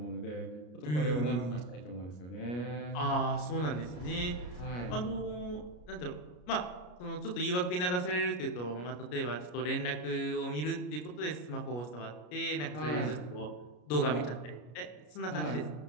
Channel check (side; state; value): right; late; 33 ms